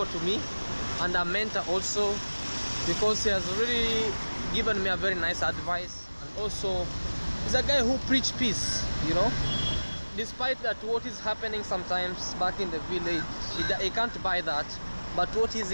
to me, and a mentor also, because he has really given me a very nice advice. And also he's a guy who preach peace, you know, despite that what is happening sometimes back in the village, he can't buy that, but what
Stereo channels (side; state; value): both; inverted; correlation -1.00